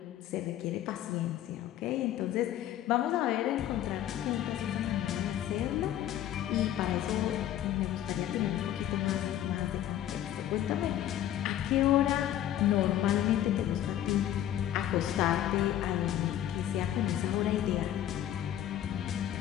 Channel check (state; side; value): quieter; right; 11.8 dB